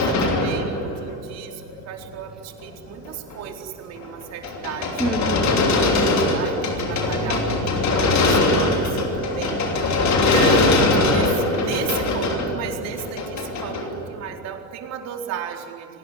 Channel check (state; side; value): normal; both; correlation 0.11